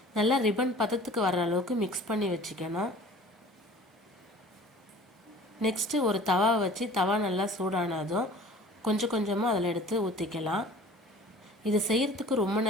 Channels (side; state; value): both; normal; correlation 0.46